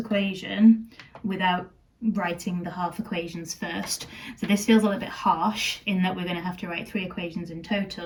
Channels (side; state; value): both; identical; correlation 1.00